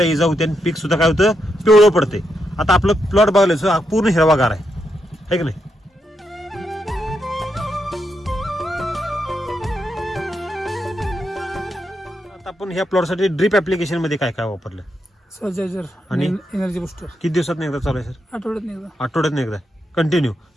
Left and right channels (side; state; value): both; normal; correlation 0.82